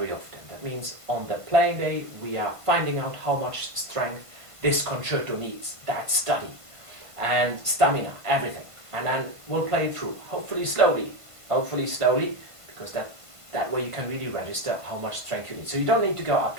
often. That means on the playing day, we are finding out how much strength this concerto needs, that study, and stamina, everything. And then we'll play it through, hopefully slowly, because that way you can really register how much strength you need. So you don't need to go up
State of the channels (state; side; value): late; left; 1.5 ms